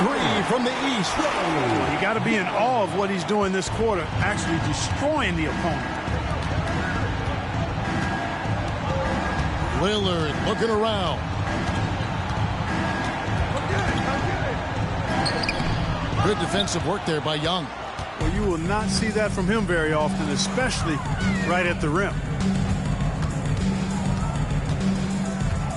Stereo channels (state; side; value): identical; both; correlation 1.00